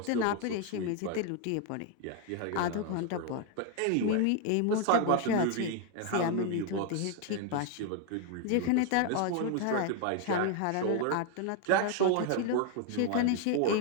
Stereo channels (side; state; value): both; different; correlation 0.00